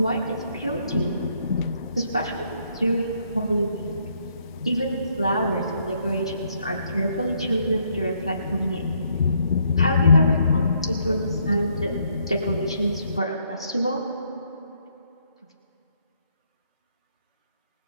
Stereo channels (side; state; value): both; inverted; correlation -0.71